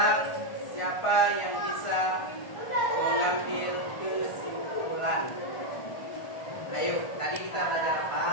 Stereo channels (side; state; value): right; late; 1.5 ms